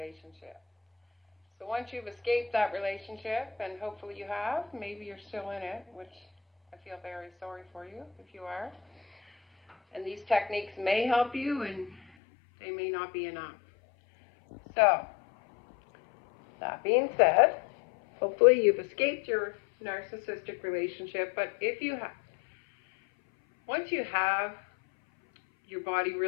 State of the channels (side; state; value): right; drops out; at 12.0 s